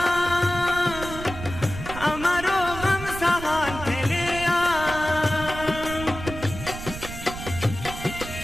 अमरो गम सहान खेलिया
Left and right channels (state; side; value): noise; right; rumble, 10 dB below the sound